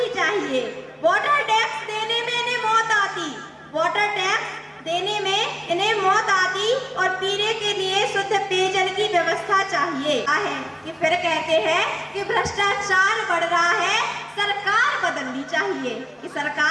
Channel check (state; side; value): identical; both; correlation 1.00